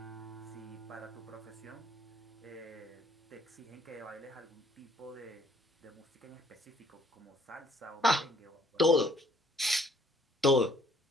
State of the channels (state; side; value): normal; both; correlation 0.62